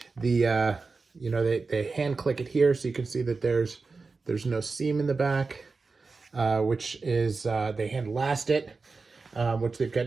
They hand click it here, so you can see that there's no seam in the back, which is they hand last it, which they've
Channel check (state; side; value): quieter; left; 4.2 dB